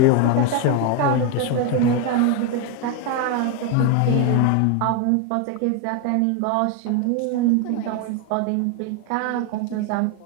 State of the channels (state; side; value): different; both; correlation 0.01